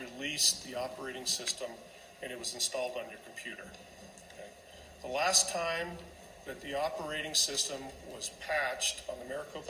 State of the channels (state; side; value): identical; both; correlation 1.00